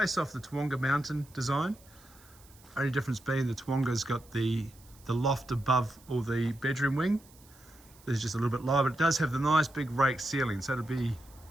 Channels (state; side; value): noise; right; hiss, 26 dB below the sound